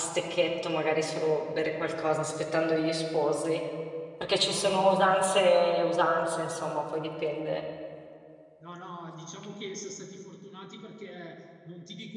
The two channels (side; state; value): both; identical; correlation 1.00